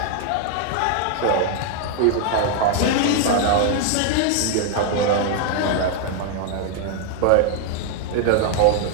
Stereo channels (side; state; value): both; different; correlation 0.00